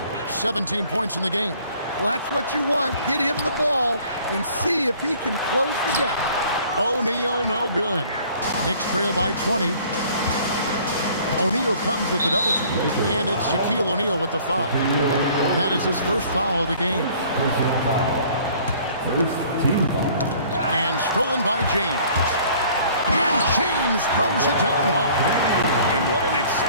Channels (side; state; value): both; inverted; correlation -0.54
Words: 17 points in the game. Well, that's what you want. Get him the ball and see if he can close the gap. O'Neal, no good. Knicks trail by 20. O'Neal comes with the double team. And it's Shaquille O'Neal with the foul. That is his first foul of the game. And stolen by James. And James throws it down hard. And what an